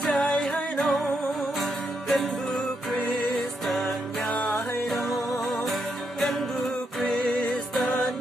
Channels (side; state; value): both; normal; correlation 0.80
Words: chạy hay đâu cần bu Kristan nhà hay đâu cần bu Kristan